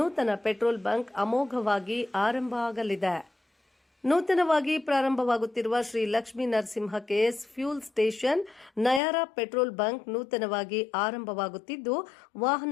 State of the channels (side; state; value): right; drops out; at 9.0 s